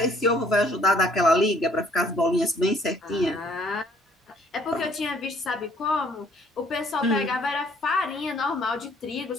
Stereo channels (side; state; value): both; normal; correlation 0.61